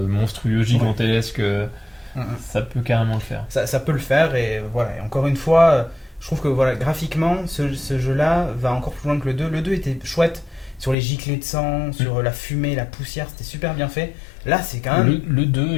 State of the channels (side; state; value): right; drops out; at 11.0 s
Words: gigantesques, ça peut carrément le faire. Ça peut le faire et voilà. Et encore une fois, je trouve que voilà, graphiquement, ce jeu-là va encore plus loin que le 2. Le 2 était chouette sur les giclées de sang, sur la fumée, la poussière, c'était super bien fait. Là, c'est quand même. Le 2,